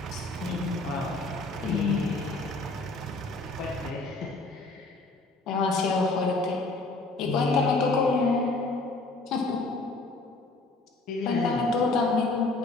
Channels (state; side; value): quieter; right; 3.2 dB